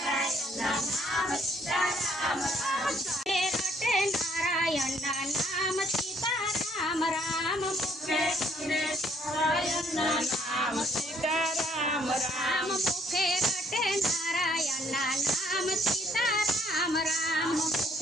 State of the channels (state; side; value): normal; both; correlation 0.65